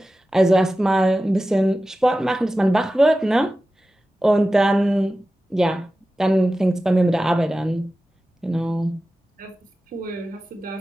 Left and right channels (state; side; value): normal; both; correlation 0.94